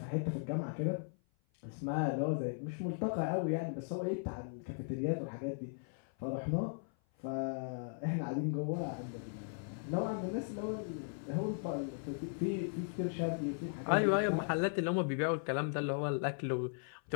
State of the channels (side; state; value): right; silent; 53 dB below the other